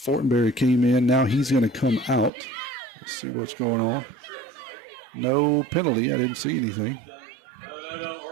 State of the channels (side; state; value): left; drops out; at 2.3 s